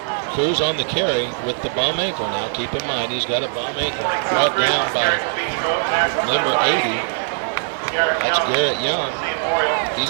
Cruz on the carry with the bum ankle now. Keep in mind, he's got a bum ankle. Brought down by number 80. That's Garrett Young.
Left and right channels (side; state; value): left; silent; 65 dB below the other